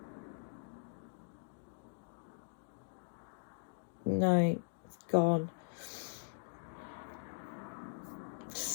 No, it's gone.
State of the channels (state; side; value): silent; right; digital silence